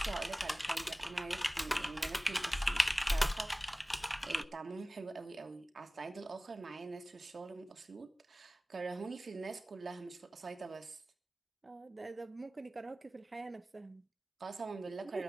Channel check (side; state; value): both; normal; correlation 0.98